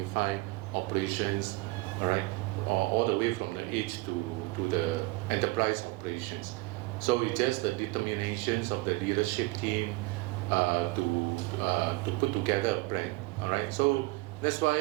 operations, all right, all the way from the edge to the enterprise operations. So it's just the determinations of the leadership team to put together a plan, all right. So that's why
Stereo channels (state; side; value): quieter; left; 22.4 dB